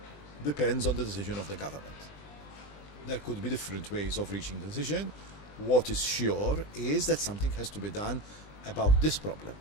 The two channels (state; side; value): late; right; 20 ms